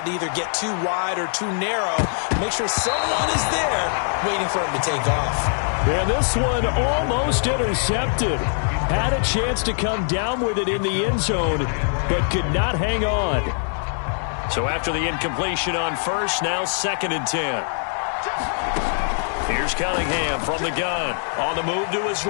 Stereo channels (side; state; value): right; silent; digital silence